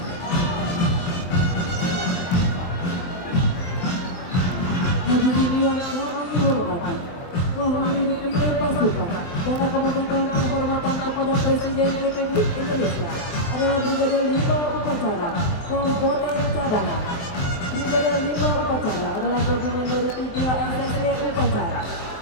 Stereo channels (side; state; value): right; late; 23 ms